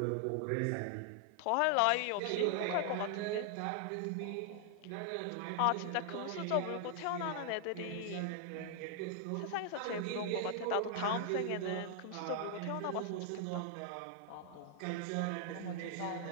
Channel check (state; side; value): different; both; correlation 0.00